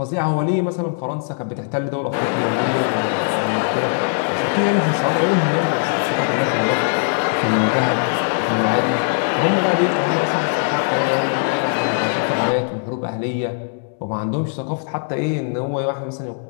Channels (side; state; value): right; silent; digital silence